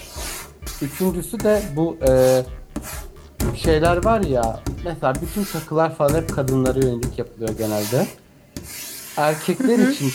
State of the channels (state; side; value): identical; both; correlation 1.00